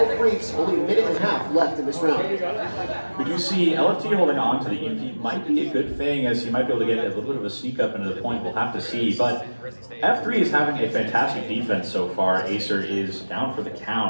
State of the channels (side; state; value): both; inverted; correlation -1.00